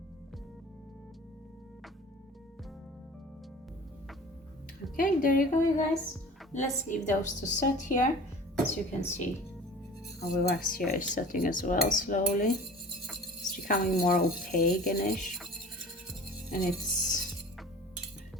Okay, there you go, you guys. Let's leave those to set here. As you can see, our wax here is setting as well slowly. It's becoming more opaque-ish, and it's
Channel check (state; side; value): normal; both; correlation 0.42